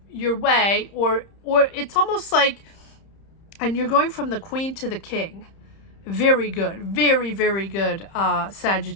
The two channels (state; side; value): late; right; 30 ms